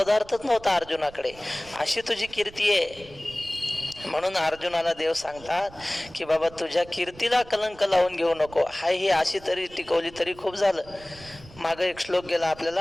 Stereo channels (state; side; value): noise; right; rumble, 21 dB below the sound